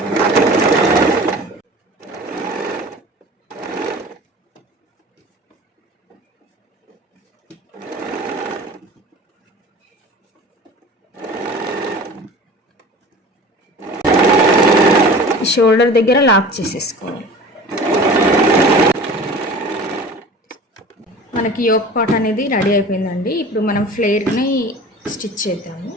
షోల్డర్ దగ్గర లాక్ చేసేసుకోవాలి. మనకి యోక్ పార్ట్ అనేది రెడీ అయిపోయిందండి. ఇప్పుడు మనం ఫ్లేర్ని స్టిచ్ చేద్దాము.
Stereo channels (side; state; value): both; normal; correlation 0.40